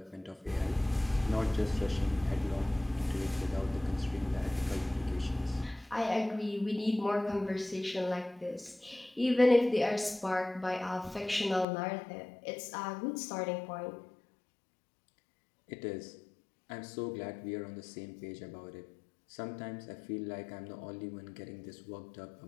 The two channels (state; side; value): drops out; right; at 11.7 s